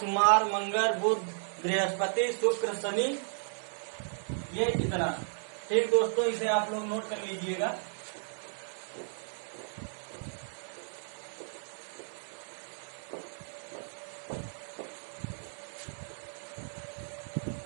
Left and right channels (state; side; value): silent; left; digital silence